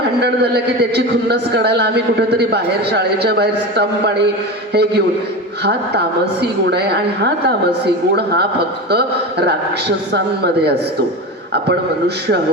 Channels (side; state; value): both; normal; correlation 0.25